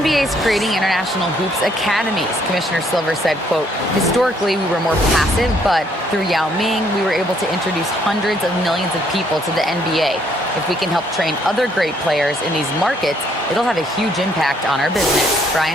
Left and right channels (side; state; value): both; normal; correlation 0.67